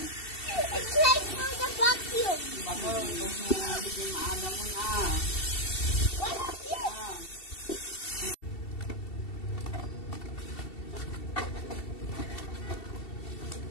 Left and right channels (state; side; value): late; right; 2.7 ms